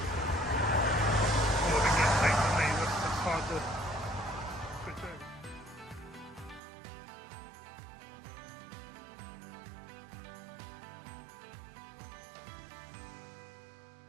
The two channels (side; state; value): left; drops out; at 6.6 s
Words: all I can get takes on me, that's hard to switch over.